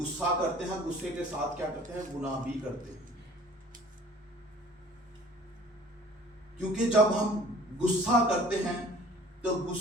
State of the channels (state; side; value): normal; both; correlation 0.50